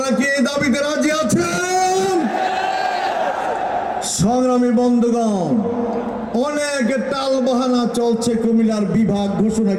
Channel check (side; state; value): both; identical; correlation 1.00